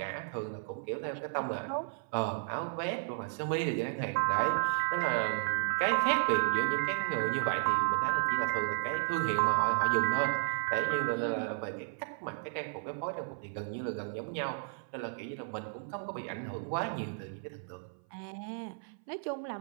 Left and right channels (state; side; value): silent; left; 55 dB below the other